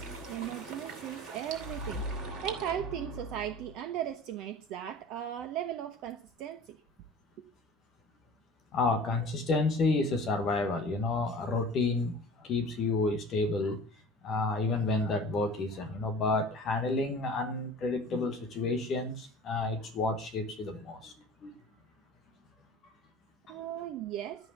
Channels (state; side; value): normal; both; correlation 0.41